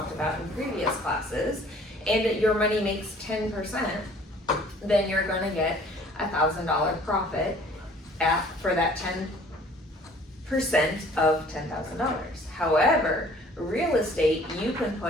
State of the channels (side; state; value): both; normal; correlation 0.54